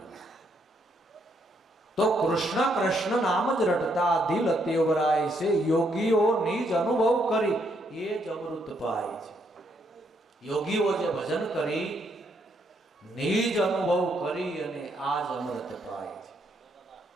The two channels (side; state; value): both; normal; correlation 0.74